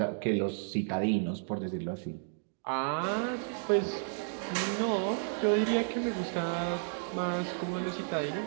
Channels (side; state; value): left; silent; digital silence